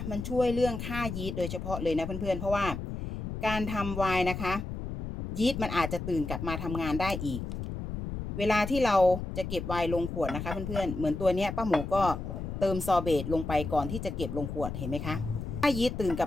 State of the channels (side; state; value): left; noise; rumble, 6 dB below the sound